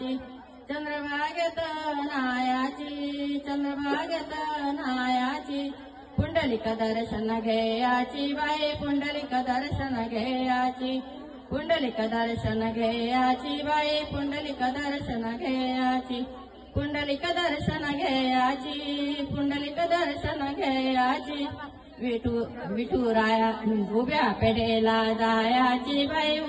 चंद्रभागेत नायाची चंद्रभागेत नायाची पुंडलिक दर्शन घेयाची बाई पुंडलिक दर्शन घेयाची पुंडलिक दर्शन घेयाची बाई पुंडलिक दर्शन घेयाची पुंडलिक दर्शन घेयाची पुंडलिक दर्शन घेयाची विठुराया उभ्या पेठेला जायाची बाई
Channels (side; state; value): both; identical; correlation 1.00